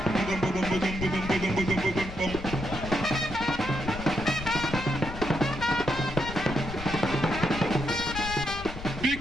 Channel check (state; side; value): noise; left; rumble, 10 dB below the sound